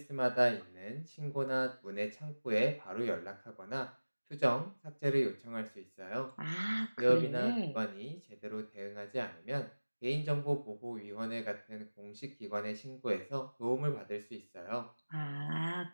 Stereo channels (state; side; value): inverted; both; correlation -1.00